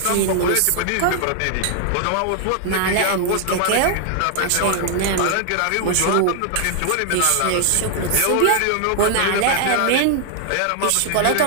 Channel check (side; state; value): both; different; correlation -0.01